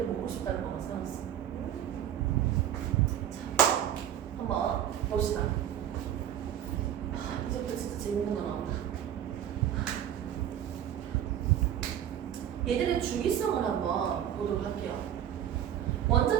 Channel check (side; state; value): left; quieter; 10.5 dB